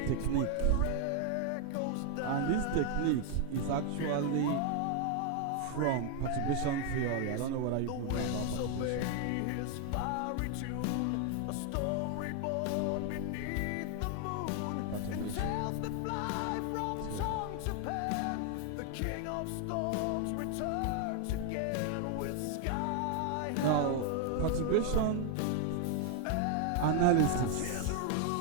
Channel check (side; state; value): both; different; correlation 0.00